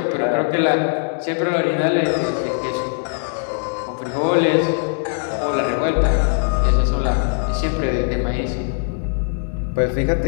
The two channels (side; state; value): right; silent; digital silence